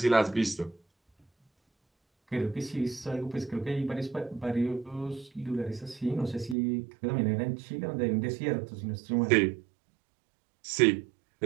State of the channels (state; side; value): drops out; left; at 6.6 s